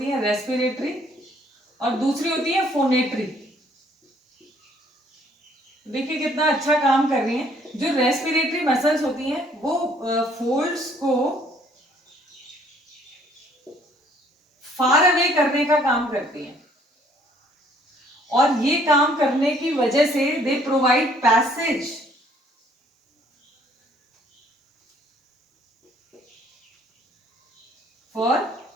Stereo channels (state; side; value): normal; both; correlation 0.62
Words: है रेस्पिरेटरी और दूसरी होती है फोनेटरी। देखिए कितना अच्छा काम कर रही हैं। जो रेस्पिरेटरी मसल्स होती हैं वो फोल्ड्स को फार अवे करने का काम करती हैं, और ये काम करने की वजह से they provide passage for